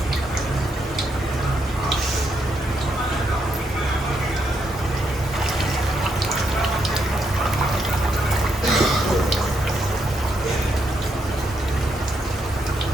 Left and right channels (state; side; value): normal; both; correlation 0.78